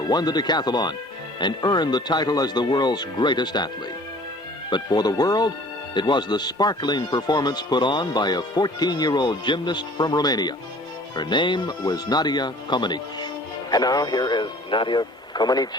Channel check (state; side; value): normal; both; correlation 0.50